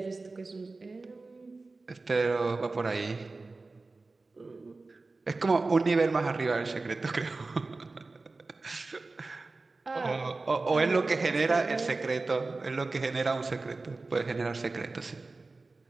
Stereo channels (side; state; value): left; quieter; 3.6 dB